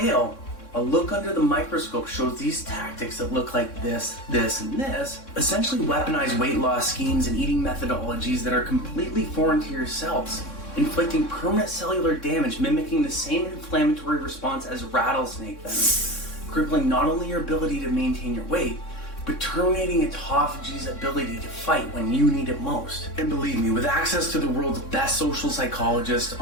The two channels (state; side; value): late; right; 3.6 ms